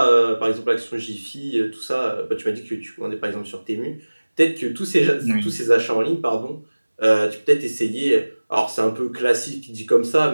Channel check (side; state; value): both; inverted; correlation -1.00